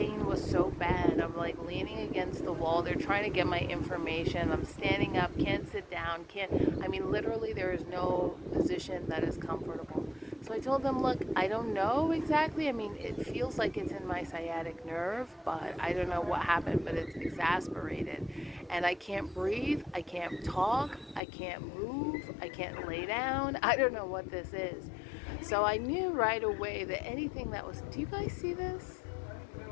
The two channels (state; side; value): drops out; right; at 21.2 s